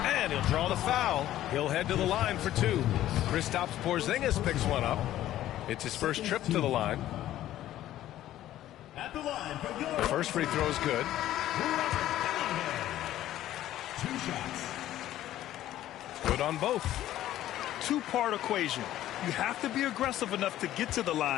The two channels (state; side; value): quieter; right; 13.4 dB